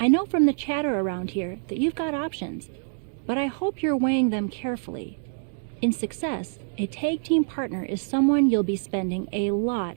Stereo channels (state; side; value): silent; left; 61 dB below the other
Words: know from the chatter around here that you've got options, but I hope you're weighing them carefully. In success, a tag team partner is someone you'll be spending a lot